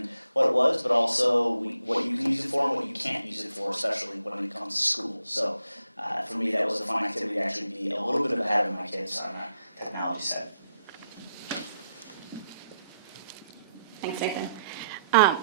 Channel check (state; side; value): inverted; both; correlation -0.79